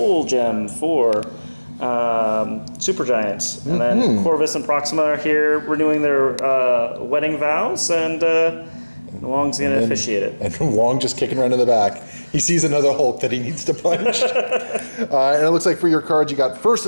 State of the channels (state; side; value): inverted; both; correlation -1.00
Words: Gem for Super Giants. And then Corvus and Proxima are here renewing their wedding vows, and Wong's going to officiate it. And Wong just kicking around in the back. He sees another Hulk that he needs to punch. And it looks like for your cards, you got First